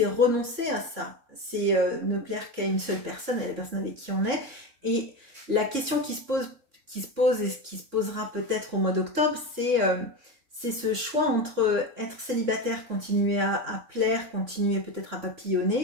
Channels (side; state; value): left; late; 3.6 ms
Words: renoncer à ça. C'est ne plaire qu'à une seule personne, à la personne avec qui on est. Et la question qui se pose et ce qui se posera peut-être au mois d'octobre, c'est ce choix entre être célibataire, continuer à plaire, continuer peut-être à